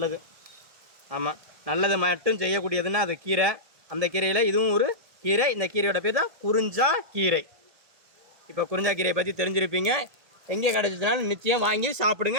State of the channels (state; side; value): late; left; 1.7 ms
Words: ஆமாம், நல்லது மட்டும் செய்யக்கூடியதுன்னா அது கீரை. அந்த கீரையில் இதுவும் ஒரு கீரை. இந்த கீரையோட பேர் தான் குறிஞ்சா கீரை. இப்போ குறிஞ்சா கீரையை பற்றி தெரிஞ்சிருப்பீங்க. எங்கே கிடச்சிச்சுனாலும் நிச்சயம் வாங்கி